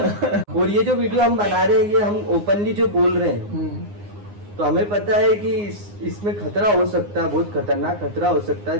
और ये जो वीडियो हम बना रहे हैं ये हम ओपनली जो बोल रहे हैं, तो हमें पता है कि इसमें खतरा हो सकता है, बहुत खतरनाक खतरा हो सकता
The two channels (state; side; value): late; left; 9.7 ms